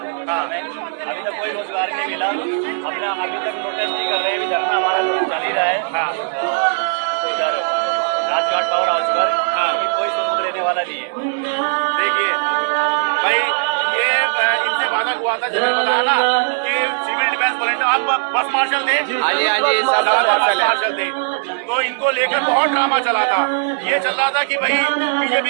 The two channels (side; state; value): left; silent; digital silence